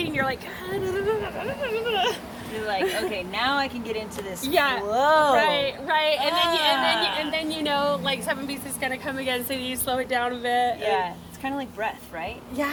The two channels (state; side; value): identical; both; correlation 1.00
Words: you're like, you're like, okay, now I can get into this. Yeah. Whoa. Right. And then like 7 beats is gonna come again, so you slow it down a bit. Yeah. It's kind of like breath, right?